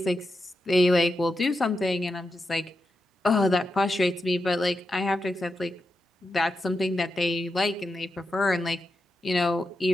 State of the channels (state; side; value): normal; both; correlation 0.88